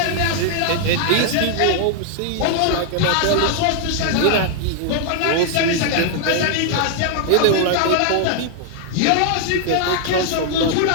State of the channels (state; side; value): different; both; correlation 0.00